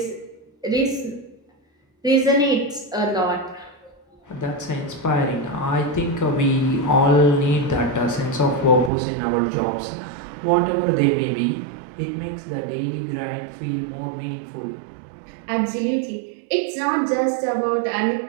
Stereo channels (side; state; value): left; drops out; at 8.9 s